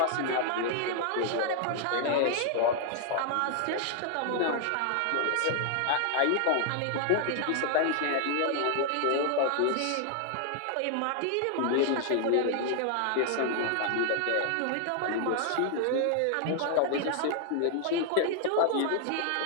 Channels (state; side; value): different; both; correlation 0.00